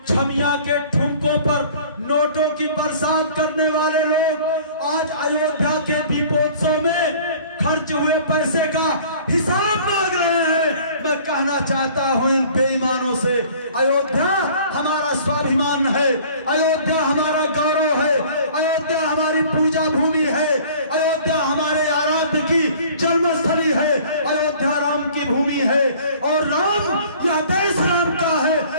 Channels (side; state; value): both; inverted; correlation -0.50